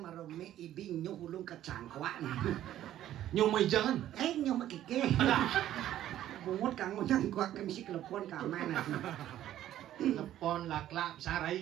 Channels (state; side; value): quieter; left; 12.5 dB